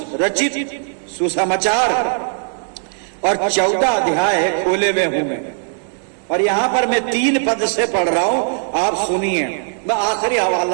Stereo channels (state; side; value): silent; left; 67 dB below the other